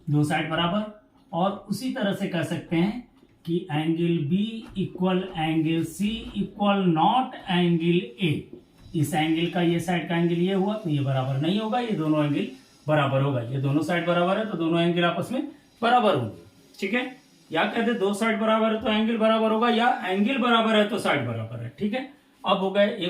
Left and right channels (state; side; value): identical; both; correlation 1.00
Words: दो साइड बराबर। और उसी तरह से कह सकते हैं कि angle B equal angle C equal not angle A. इस एंगल का ये साइड का एंगल ये हुआ तो ये बराबर नहीं होगा, ये दोनों एंगल बराबर होगा। ये दोनों साइड बराबर है तो दोनों एंगल आपस में बराबर होंगे, ठीक है। या कहते दो साइड बराबर है तो एंगल बराबर होगा, या एंगल बराबर है तो साइड बराबर है, ठीक है। अब हो गए,